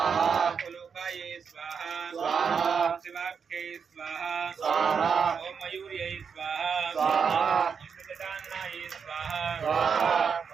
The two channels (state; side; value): quieter; left; 6.3 dB